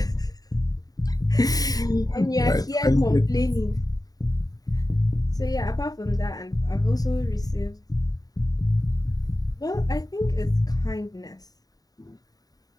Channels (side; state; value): right; late; 0.18 ms